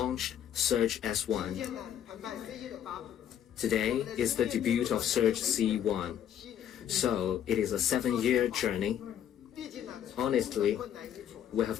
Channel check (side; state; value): right; quieter; 9.9 dB